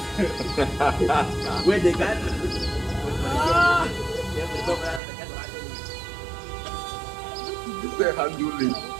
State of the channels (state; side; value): drops out; left; at 5.0 s